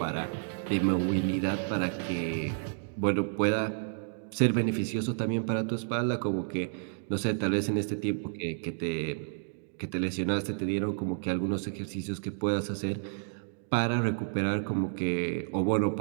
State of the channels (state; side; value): silent; left; digital silence